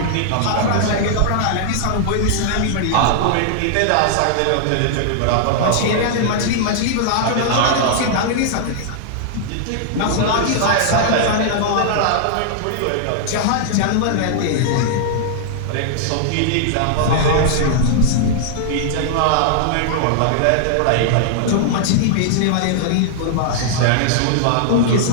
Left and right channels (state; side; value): different; both; correlation -0.01